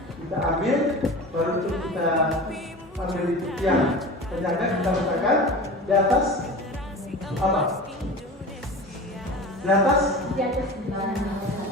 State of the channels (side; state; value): both; normal; correlation 0.33